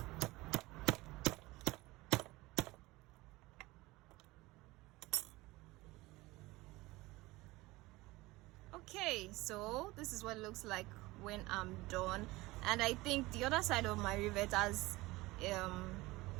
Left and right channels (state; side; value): quieter; left; 20.4 dB